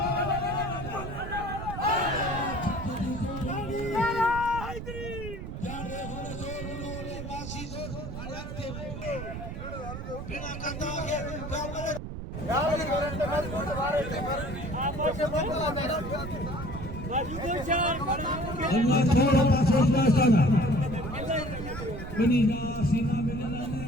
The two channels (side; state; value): right; noise; rumble, 8 dB below the sound